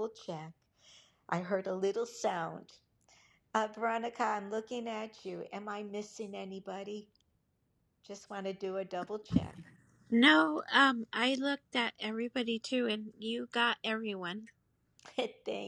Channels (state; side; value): identical; both; correlation 1.00